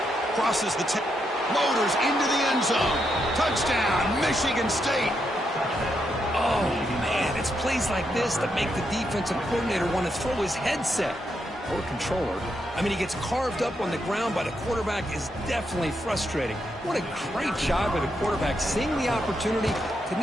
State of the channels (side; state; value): both; normal; correlation 0.81